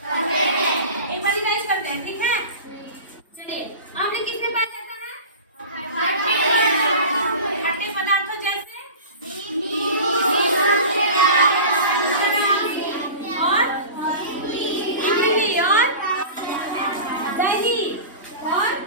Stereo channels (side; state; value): both; inverted; correlation -0.34